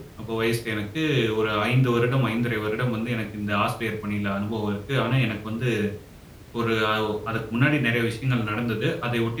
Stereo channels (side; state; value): both; identical; correlation 1.00